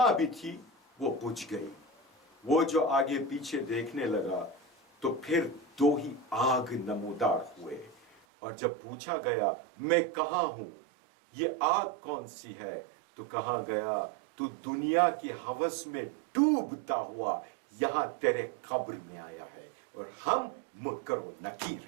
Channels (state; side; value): drops out; left; at 8.2 s